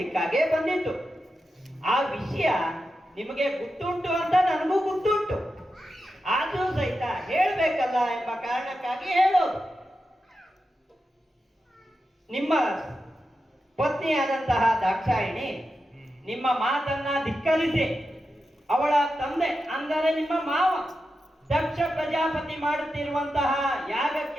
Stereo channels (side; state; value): both; normal; correlation 0.90